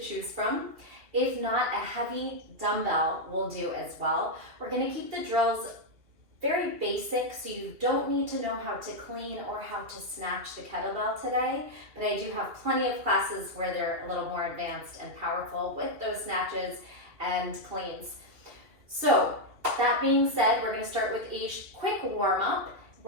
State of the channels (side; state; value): left; late; 2.7 ms